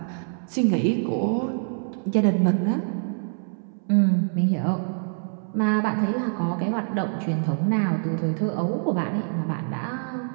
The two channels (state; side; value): silent; left; 62 dB below the other